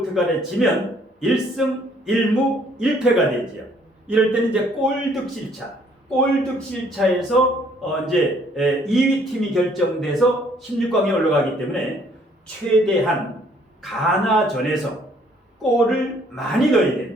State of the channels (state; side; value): normal; both; correlation 0.63